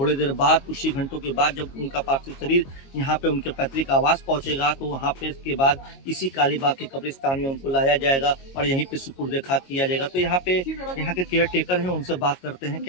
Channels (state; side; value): late; right; 22 ms